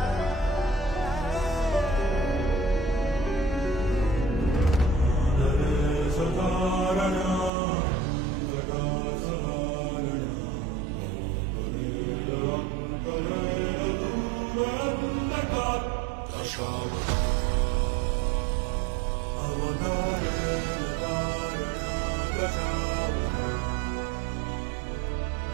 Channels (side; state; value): left; drops out; at 7.5 s